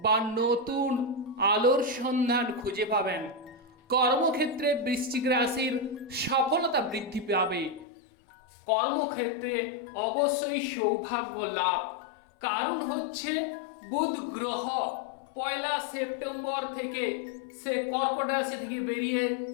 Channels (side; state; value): right; drops out; at 7.9 s